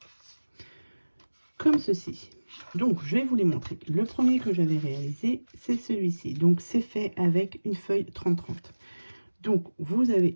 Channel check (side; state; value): both; inverted; correlation -1.00